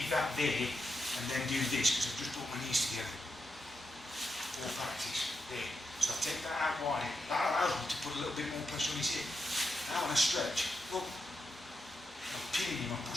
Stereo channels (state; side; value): normal; both; correlation 0.85